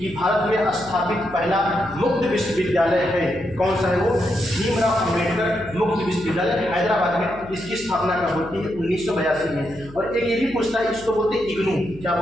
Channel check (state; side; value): noise; left; hum, 19 dB below the sound